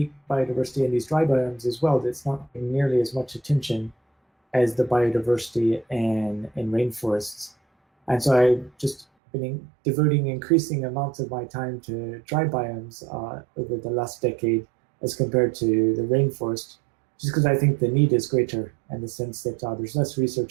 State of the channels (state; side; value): drops out; left; at 9.1 s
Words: biodiversity in these dry biomes as well that's not getting nearly as much attention as the biodiversity in rainforests. And so I just been devoting increasing amounts of my time to dry biomes over the last decade as compared to the rainforest, just because I think the need is greater in the sense that there's less